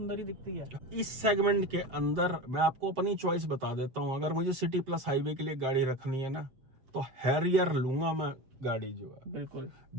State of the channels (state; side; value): late; left; 7.7 ms